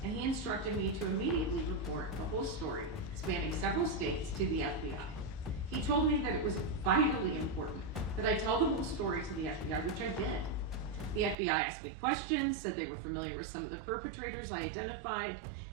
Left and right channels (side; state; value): left; drops out; at 11.4 s